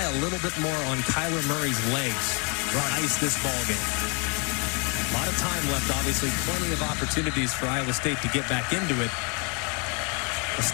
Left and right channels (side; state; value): right; quieter; 34.0 dB